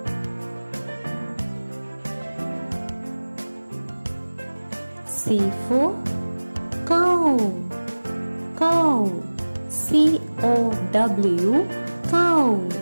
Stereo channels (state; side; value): inverted; both; correlation -1.00